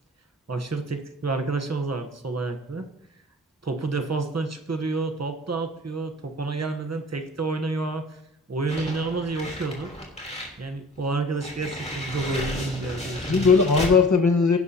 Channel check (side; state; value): both; normal; correlation 0.46